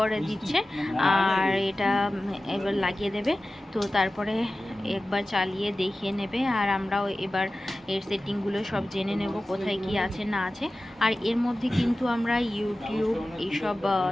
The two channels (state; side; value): normal; both; correlation 0.96